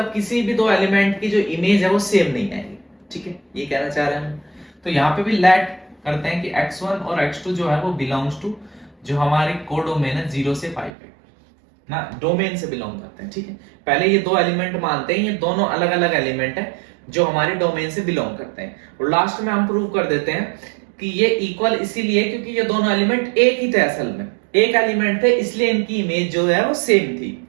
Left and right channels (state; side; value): drops out; left; at 10.9 s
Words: किसी भी दो एलिमेंट की जो इमेज है वो सेम नहीं आएगी, ठीक है, ये कहना चाह रहे हैं। तो यहाँ पे भी लेट करते हैं कि x1 और x2 जो है वो बिलोंग्स टू जो हमारी कोडोमेन है 0 से π पे ना, डोमेन से बिलोंग करते हैं, ठीक है। पहले ये दो एलिमेंट मानते हैं, ये दोनों अलग अलग एलिमेंट है जो हमारे डोमेन से बिलोंग करते हैं, और लास्ट में हम प्रूव कर देते हैं कि ये इक्वल इसीलिए क्योंकि ये दोनों एलिमेंट एक ही थे, असल में एक एलिमेंट थे, इसलिए इनकी इमेज जो है वो सेम थी,